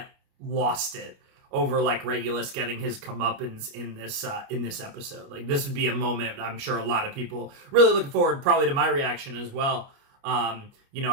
lost it over like Regulus getting his comeuppance in this episode. Like, this would be a moment I'm sure a lot of people really looking forward probably to my reaction as well.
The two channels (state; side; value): late; left; 29 ms